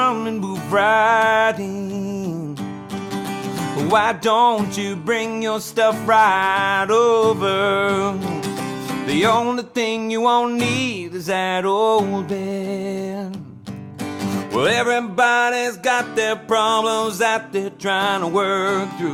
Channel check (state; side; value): identical; both; correlation 1.00